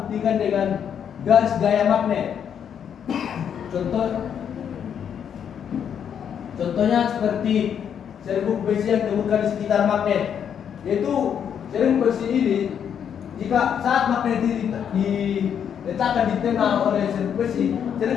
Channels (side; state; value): right; quieter; 8.3 dB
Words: dengan garis gaya magnet. Contohnya seperti serbuk besi yang ditemukan di sekitar magnet. Yaitu serbuk besi ini jika saat magnet diletakkan di tengah oleh serbuk